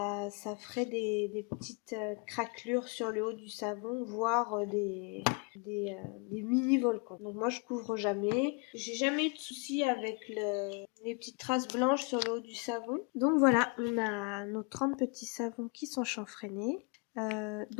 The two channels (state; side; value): quieter; right; 32.5 dB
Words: ferait des petites craquelures sur le haut du savon, voire des mini-volcans. Donc moi je couvre jamais. J'ai jamais eu de soucis avec les petites traces blanches sur le haut du savon. Donc voilà, on a nos 30 petits savons qui sont chanfreinés.